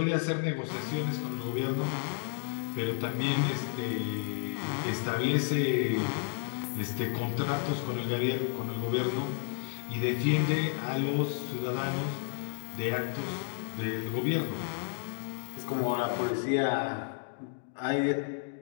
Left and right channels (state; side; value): silent; right; digital silence